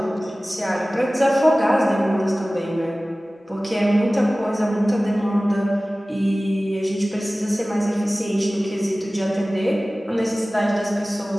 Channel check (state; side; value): normal; both; correlation 0.97